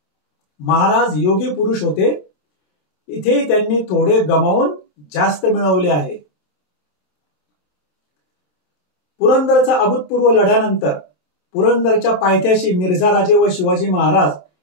महाराज योगी पुरुष होते. इथेही त्यांनी थोडे गमावून जास्त मिळवले आहे. पुरंदरचा अभूतपूर्व लढ्यानंतर पुरंदरच्या पायथ्याशी मिर्झा राजे व शिवाजी महाराज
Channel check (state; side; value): late; right; 23 ms